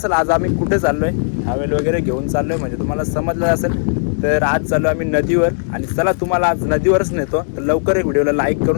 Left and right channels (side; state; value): right; silent; digital silence